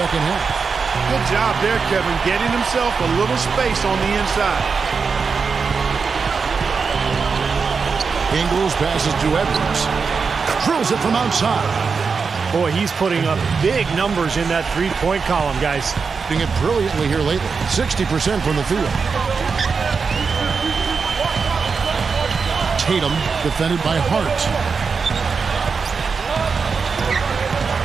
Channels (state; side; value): quieter; left; 5.2 dB